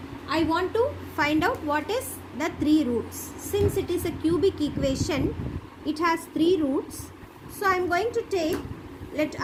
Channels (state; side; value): identical; both; correlation 1.00